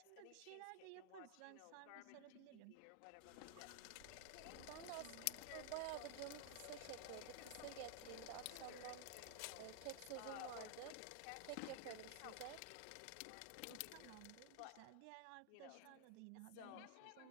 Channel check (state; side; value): different; both; correlation 0.00